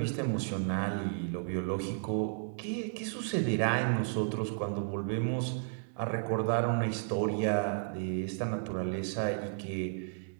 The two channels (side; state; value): left; silent; digital silence